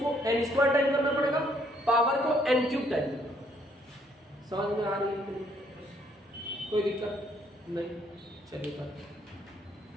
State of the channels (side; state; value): both; normal; correlation 0.67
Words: एन स्क्वायर टाइम करना पड़ेगा, पावर को एन क्यूब टाइम। समझ में आ रही है? कोई दिक्कत नहीं, चलिए।